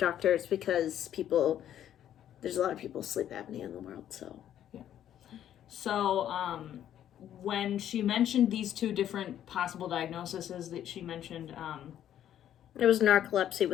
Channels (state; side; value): quieter; right; 10.8 dB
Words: It's because there's a lot of people with sleep apnea in the world, so. Yeah. So, when she mentioned these two different possible diagnoses that she mentioned, it was narcolepsy